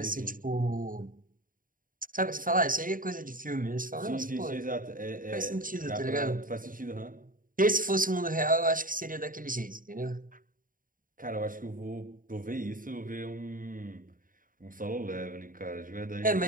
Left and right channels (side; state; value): left; late; 0.40 ms